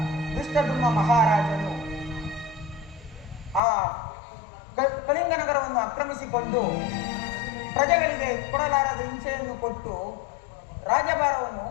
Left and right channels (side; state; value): right; drops out; at 3.6 s